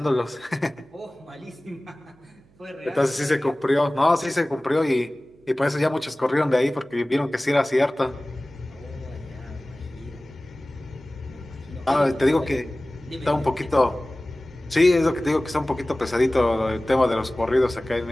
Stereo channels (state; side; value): noise; right; hum, 30 dB below the sound